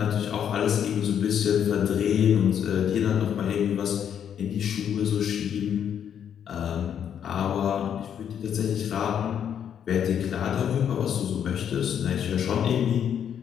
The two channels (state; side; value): quieter; right; 8.8 dB